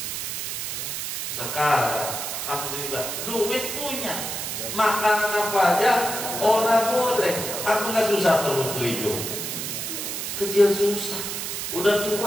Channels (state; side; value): noise; right; hiss, 4 dB below the sound